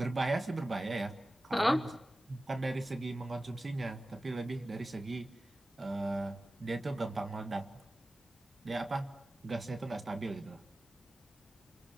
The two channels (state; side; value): normal; both; correlation 0.95